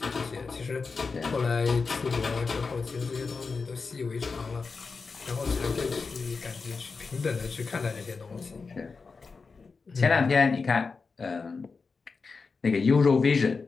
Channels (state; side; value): quieter; right; 4.6 dB